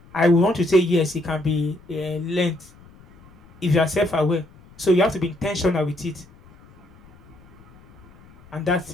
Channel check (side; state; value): left; noise; rumble, 25 dB below the sound